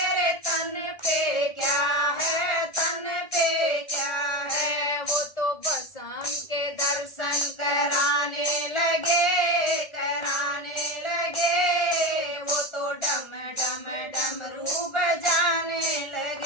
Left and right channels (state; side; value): late; right; 1.4 ms